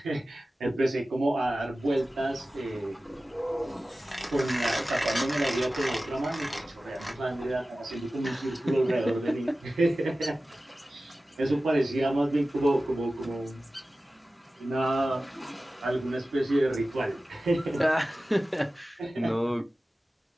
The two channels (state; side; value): normal; both; correlation 0.95